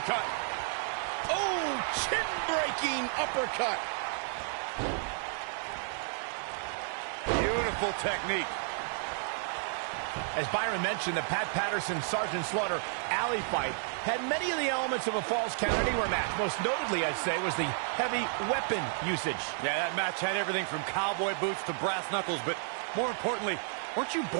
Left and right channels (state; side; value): silent; left; 57 dB below the other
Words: Oh, chin-breaking uppercut. Beautiful technique. As Byron mentioned, the Pat Patterson-Sergeant Slaughter alley fight had many of the elements of a Falls Count Anywhere match. Most notably, I'd say, was the heavy weapon usage. Yeah, that match had everything from cowboy boots to brass knuckles, but more importantly, weren't you